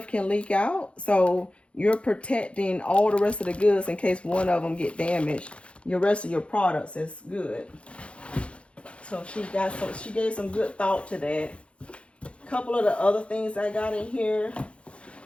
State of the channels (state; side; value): late; right; 0.060 ms